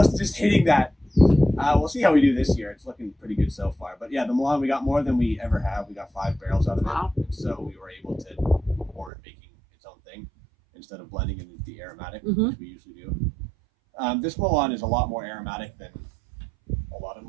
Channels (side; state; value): left; drops out; at 9.1 s